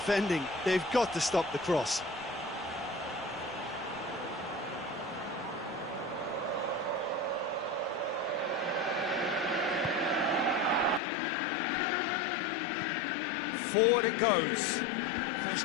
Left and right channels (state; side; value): drops out; right; at 11.0 s